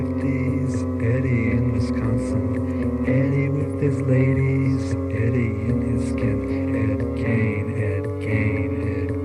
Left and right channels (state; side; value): identical; both; correlation 1.00